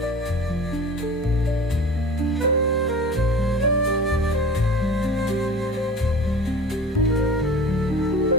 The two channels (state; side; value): normal; both; correlation 0.39